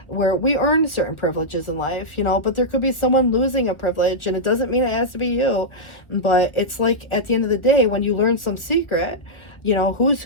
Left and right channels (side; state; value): right; late; 1.4 ms